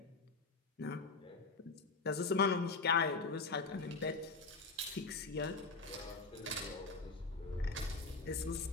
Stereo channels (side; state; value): right; quieter; 3.9 dB